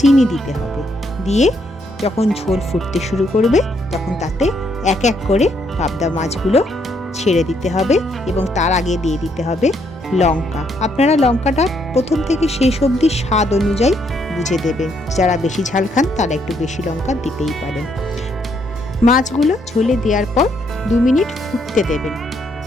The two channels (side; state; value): both; normal; correlation 0.73